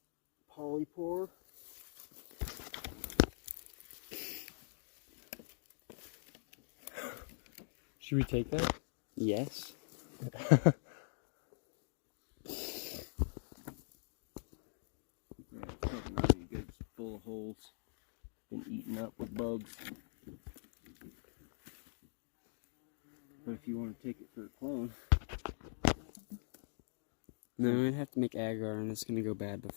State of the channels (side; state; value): right; silent; digital silence